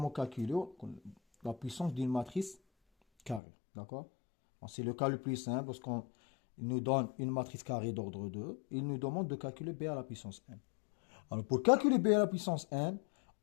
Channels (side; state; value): right; drops out; at 3.4 s